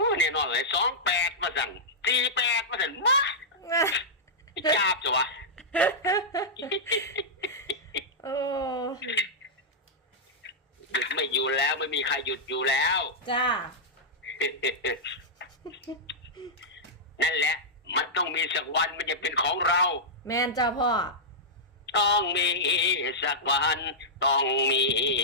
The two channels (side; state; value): both; normal; correlation -0.11